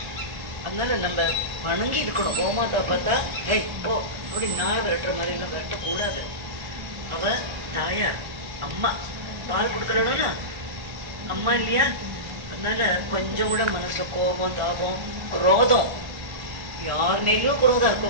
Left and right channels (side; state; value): left; late; 1.4 ms